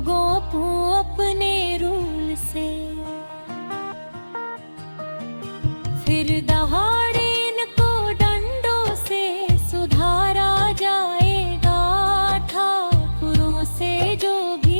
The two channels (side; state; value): both; inverted; correlation -1.00